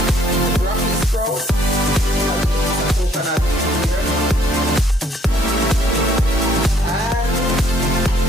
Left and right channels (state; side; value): normal; both; correlation 0.64